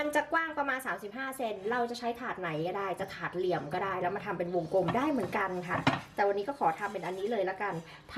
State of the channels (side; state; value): both; identical; correlation 1.00